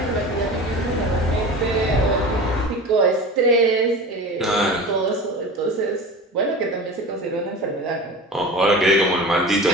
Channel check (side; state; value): both; normal; correlation 0.33